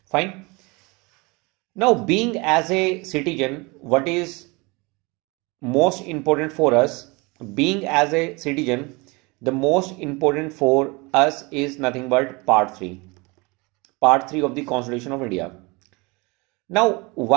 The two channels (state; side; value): quieter; left; 26.5 dB